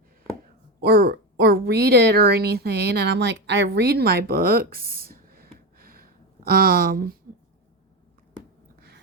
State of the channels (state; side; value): normal; both; correlation 0.16